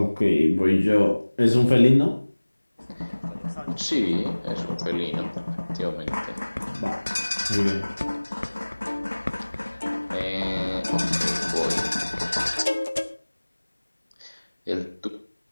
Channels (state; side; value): inverted; both; correlation -1.00